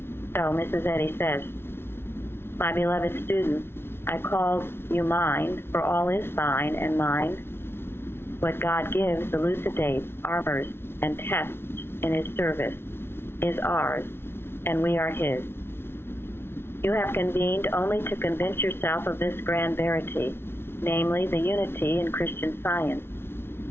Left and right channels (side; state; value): right; late; 0.12 ms